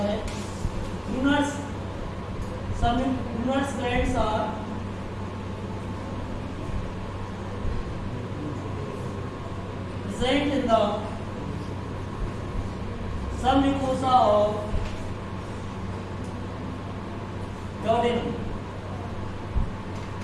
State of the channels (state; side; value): identical; both; correlation 1.00